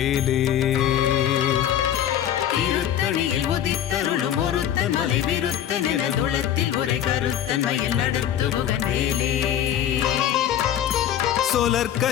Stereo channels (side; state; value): right; quieter; 10.6 dB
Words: திருத்தணியில் உதித்தருளும் ஒருத்தன் மலை விருத்தன் எனதுளத்தில் உரை கருத்தன் மயில் நடத்து குகன் வேலே.